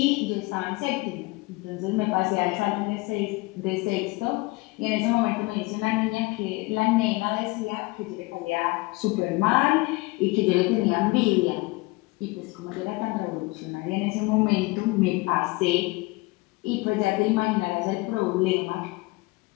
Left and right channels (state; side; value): quieter; right; 23.5 dB